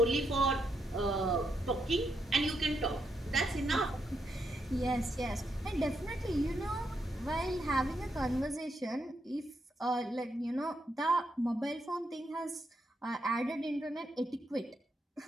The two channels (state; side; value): normal; both; correlation 0.80